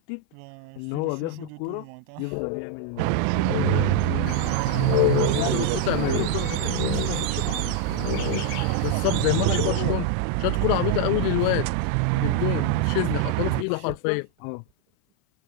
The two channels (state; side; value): different; both; correlation 0.00